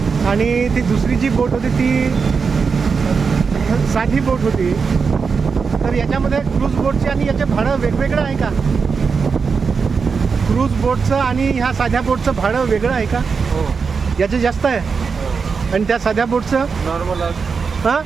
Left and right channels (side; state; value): left; quieter; 5.4 dB